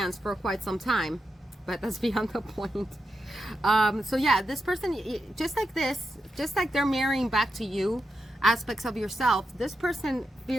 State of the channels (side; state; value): both; normal; correlation 0.87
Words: for quite some time, but that's beyond the point. So yeah, this person, just like they're mirroring back to you aspects of yourself, this person